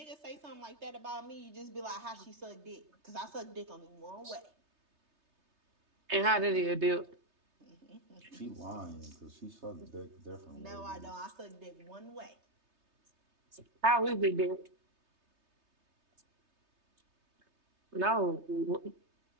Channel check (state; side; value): late; left; 3.3 ms